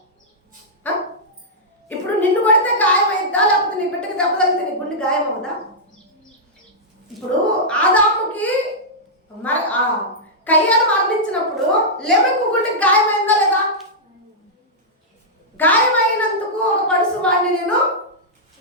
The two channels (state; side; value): normal; both; correlation -0.10